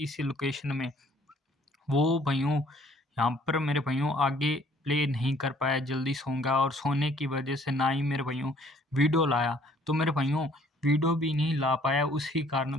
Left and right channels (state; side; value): normal; both; correlation 0.59